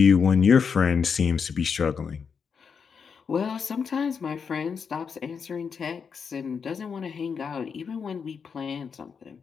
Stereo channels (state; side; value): quieter; right; 6.1 dB